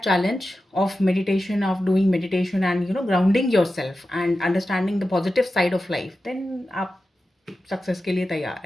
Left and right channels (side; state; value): both; normal; correlation 0.92